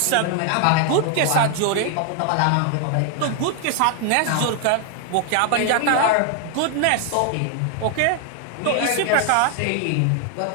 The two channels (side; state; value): both; different; correlation 0.00